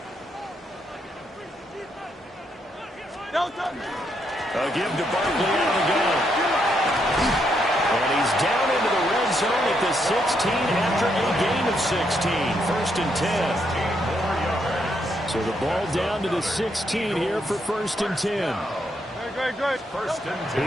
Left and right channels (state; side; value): normal; both; correlation 0.77